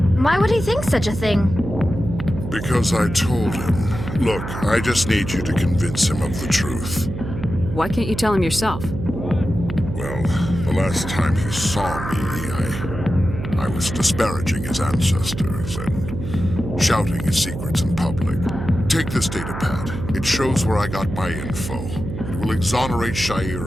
Why would he think such a thing? Because I told him. Look, I just need you to convince him of the truth. Why can't you tell him yourself? Well, the last time he saw me, I was disparaging his ancestors and shouting his secrets in public. Take this data pad. It shows where I got my info. It will exonerate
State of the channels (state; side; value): noise; right; hum, 7 dB below the sound